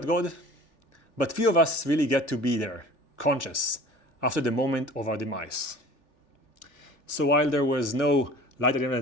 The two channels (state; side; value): late; right; 3.4 ms